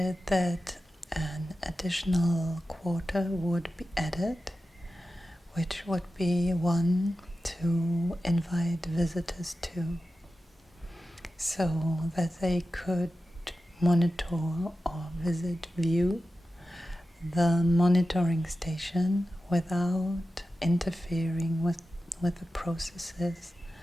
that an additional quarter would be added, which would be one to invite visitors to, so that they could monitor or view the monitoring station without interfering with the processes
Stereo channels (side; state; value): both; normal; correlation 0.93